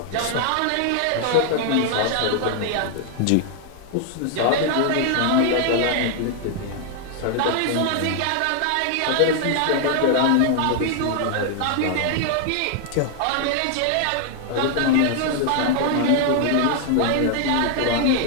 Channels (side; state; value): both; different; correlation 0.00